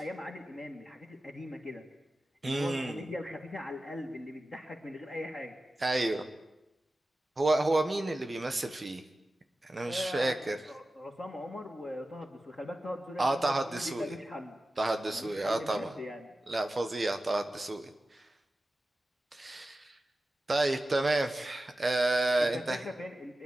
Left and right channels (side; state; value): both; normal; correlation 0.94